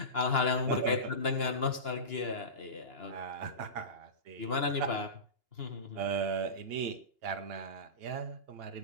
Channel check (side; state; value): left; late; 2.8 ms